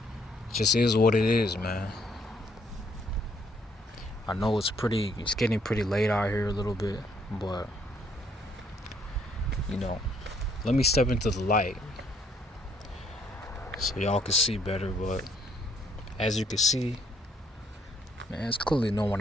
just is what it is, man. I know it's getting pretty late out here a little bit, but you know, let me step into the light so y'all can see better. But as you can see, man, it's clearly no one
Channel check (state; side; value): normal; both; correlation 0.68